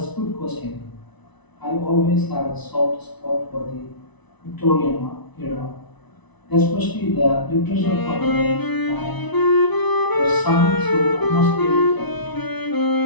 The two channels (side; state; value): right; late; 1.0 ms